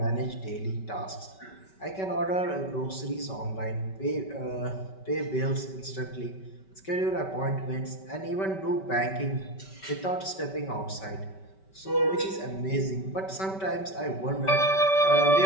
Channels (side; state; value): right; late; 5.2 ms